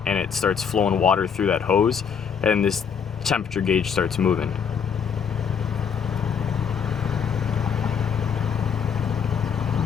and it starts flowing water through that hose, and this temperature gauge starts moving.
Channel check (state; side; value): quieter; right; 6.9 dB